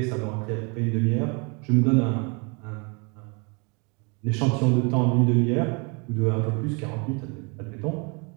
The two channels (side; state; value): left; quieter; 32.6 dB